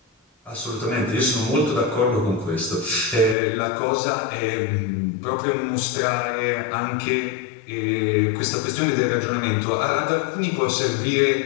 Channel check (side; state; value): right; drops out; at 3.4 s